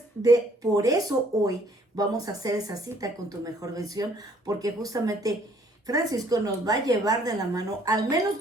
por eso hoy vamos a hacer esa cita con tu mejor versión, porque justamente Francisco nos va a llevar de la mano, al menos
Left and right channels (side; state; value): both; normal; correlation 0.62